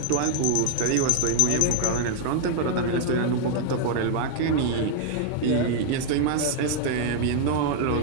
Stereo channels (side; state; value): both; different; correlation 0.00